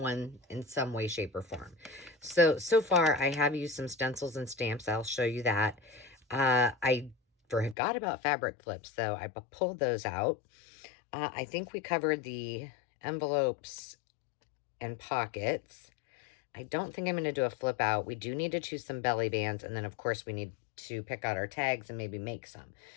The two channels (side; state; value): right; drops out; at 7.8 s